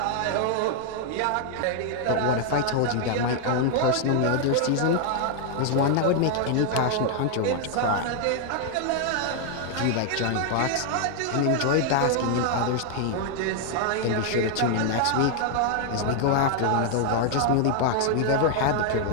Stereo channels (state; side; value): different; both; correlation 0.00